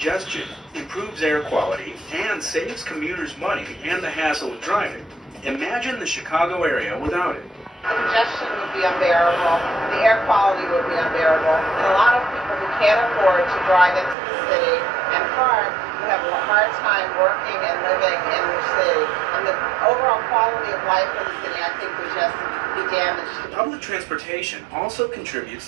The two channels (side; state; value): left; drops out; at 14.2 s